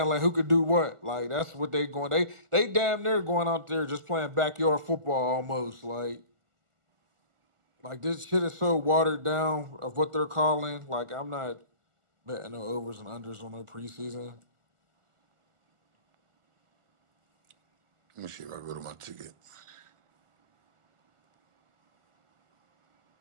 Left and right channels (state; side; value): late; left; 1.4 ms